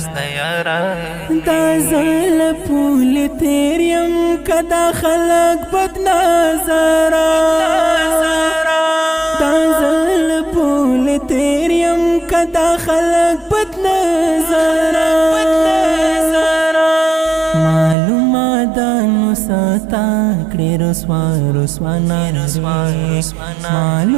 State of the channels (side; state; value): left; drops out; at 17.9 s